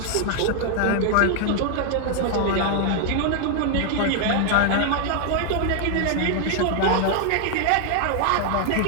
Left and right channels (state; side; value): different; both; correlation 0.00